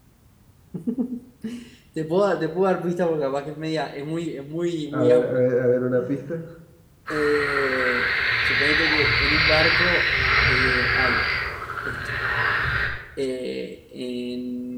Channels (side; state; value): both; identical; correlation 1.00